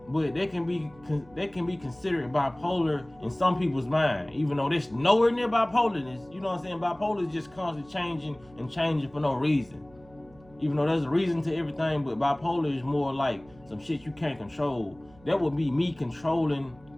But they can be considered bipolar in some people's mind, even though there's nowhere near bipolarness. You know what I'm saying? Bipolar is just constantly changing for no reason. Even though there's a reason to everything, but bipolar is more like some shit you can't control. That would be me controlling,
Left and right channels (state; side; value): noise; right; hum, 26 dB below the sound